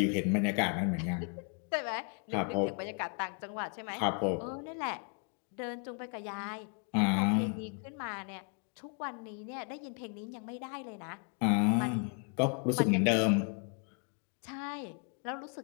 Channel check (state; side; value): quieter; right; 38.4 dB